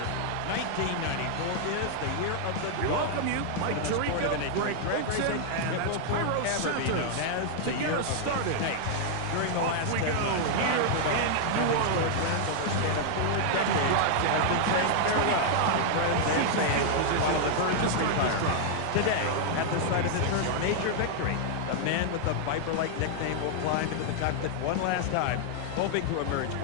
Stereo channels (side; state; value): both; different; correlation -0.01